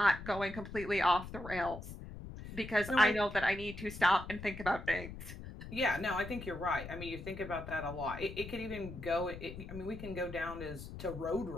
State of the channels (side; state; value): left; noise; rumble, 11 dB below the sound